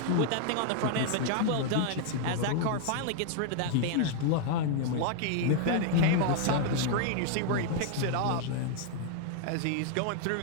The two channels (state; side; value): different; both; correlation 0.00